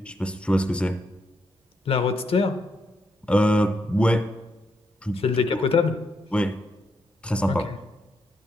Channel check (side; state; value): both; normal; correlation 0.79